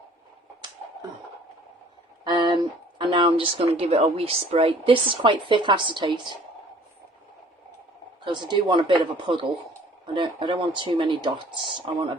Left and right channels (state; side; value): normal; both; correlation 0.54